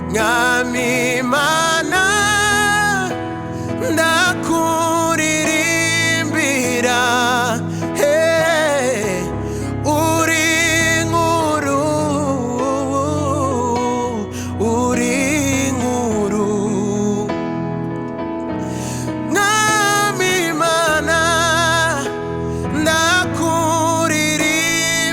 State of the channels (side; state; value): both; identical; correlation 1.00